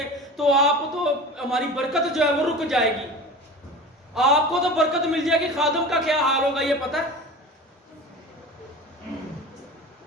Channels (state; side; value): normal; both; correlation 0.35